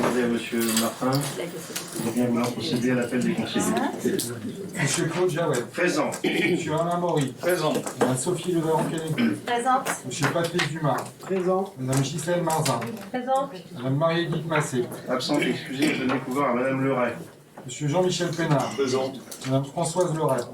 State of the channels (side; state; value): both; identical; correlation 1.00